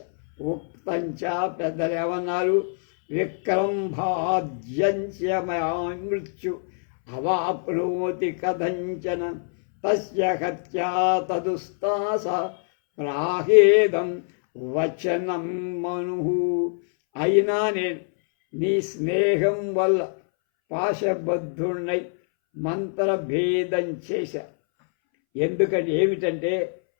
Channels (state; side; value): silent; right; 62 dB below the other